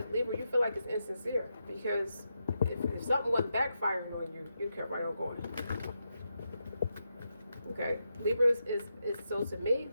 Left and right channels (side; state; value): both; inverted; correlation -0.85